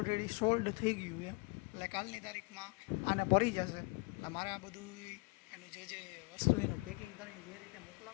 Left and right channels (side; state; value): right; quieter; 28.5 dB